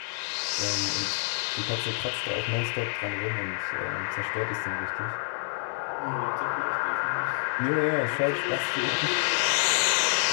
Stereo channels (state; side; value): silent; right; digital silence